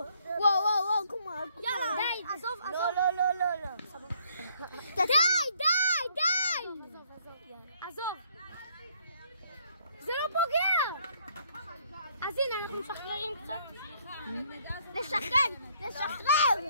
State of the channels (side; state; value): both; inverted; correlation -0.66